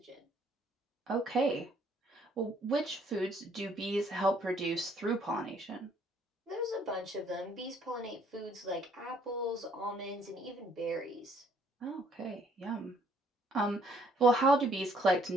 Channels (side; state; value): both; normal; correlation 0.64